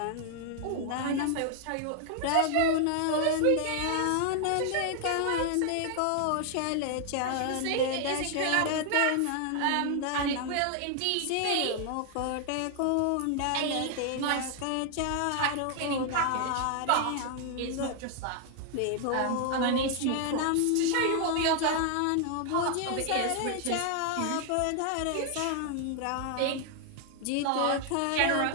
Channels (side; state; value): both; different; correlation 0.00